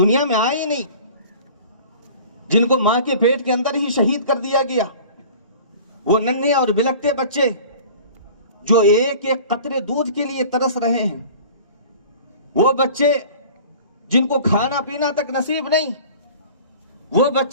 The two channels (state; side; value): inverted; both; correlation -0.43